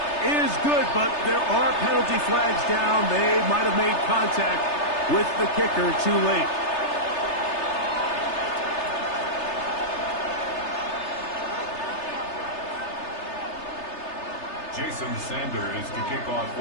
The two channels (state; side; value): late; right; 3.3 ms